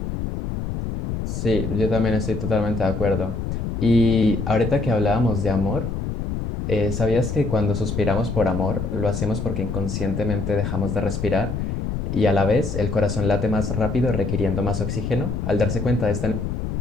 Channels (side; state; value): left; noise; rumble, 3 dB below the sound